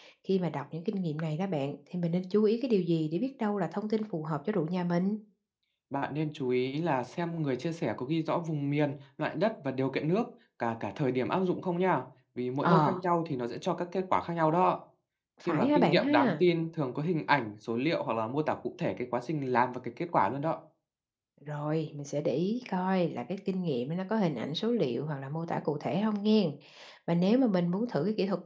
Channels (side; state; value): both; identical; correlation 1.00